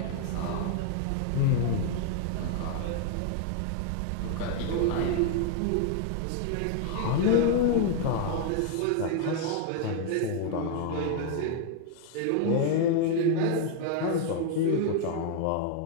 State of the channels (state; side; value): different; both; correlation 0.00